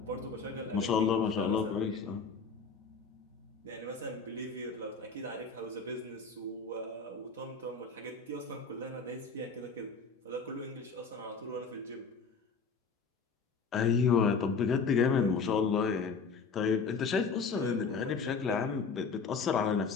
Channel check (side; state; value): right; quieter; 5.1 dB